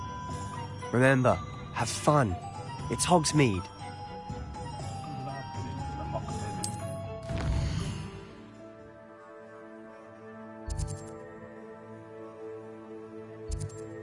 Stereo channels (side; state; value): both; identical; correlation 1.00